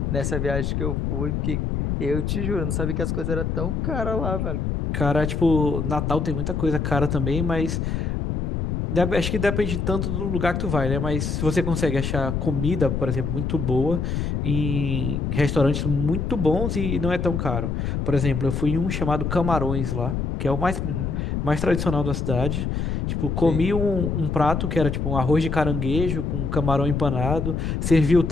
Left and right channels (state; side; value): noise; left; rumble, 1 dB below the sound